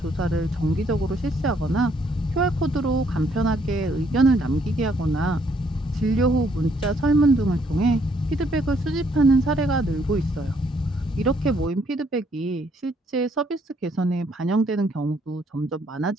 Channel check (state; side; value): normal; both; correlation 0.68